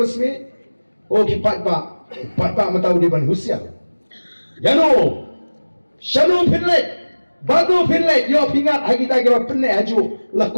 smith oh kipat ba matau di ban husia yano shanu pinlet badu pinlet yo pingat ha kita ka penne haju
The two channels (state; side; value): inverted; both; correlation -1.00